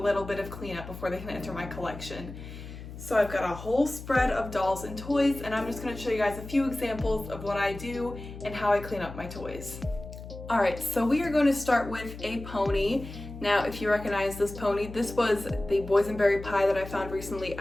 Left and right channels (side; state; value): left; noise; hum, 12 dB below the sound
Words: bit of cleanup before they can enter my collection. So I've got a whole spread of dolls and toys, and I'm just going to show you guys a few examples of what I do and how I clean up my toys. Alright, so we are going to start with a pony. Now, if you recognize this pony, this was the boysenberry pie that I found recently